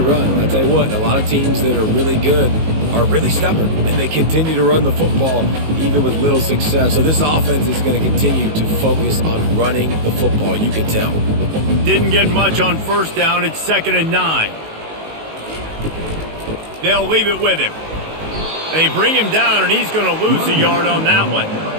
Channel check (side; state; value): left; late; 19 ms